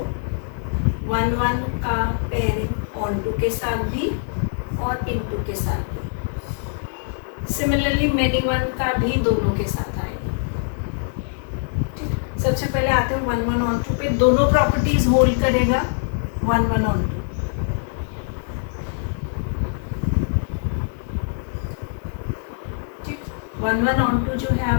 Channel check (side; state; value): right; silent; 63 dB below the other